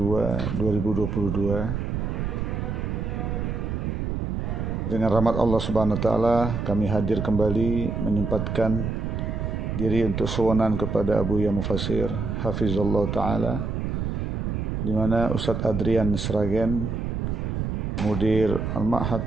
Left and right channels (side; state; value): right; noise; rumble, 2 dB below the sound